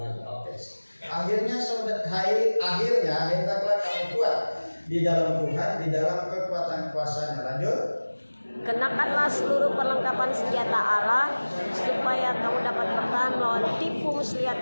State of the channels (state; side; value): inverted; both; correlation -1.00